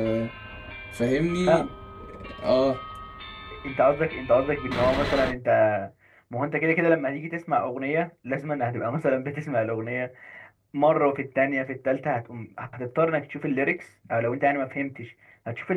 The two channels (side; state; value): both; identical; correlation 1.00